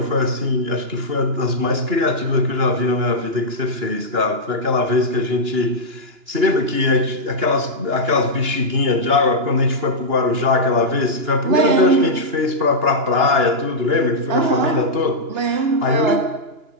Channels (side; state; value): left; late; 2.9 ms